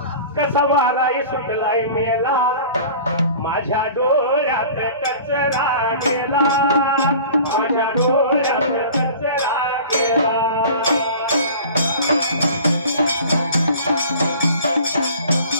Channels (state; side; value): inverted; both; correlation -0.42